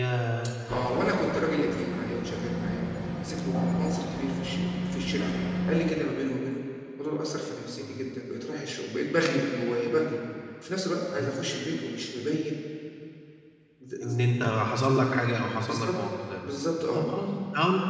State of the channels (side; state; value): both; identical; correlation 1.00